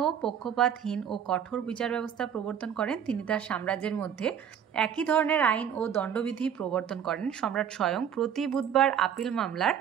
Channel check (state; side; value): quieter; left; 8.6 dB